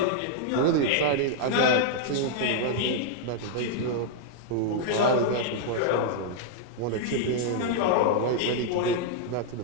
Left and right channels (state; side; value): different; both; correlation -0.01